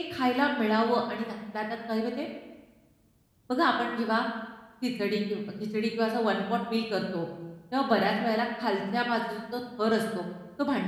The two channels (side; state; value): both; identical; correlation 1.00